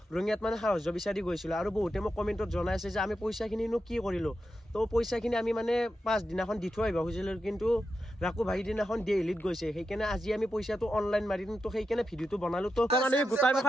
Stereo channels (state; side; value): normal; both; correlation 0.88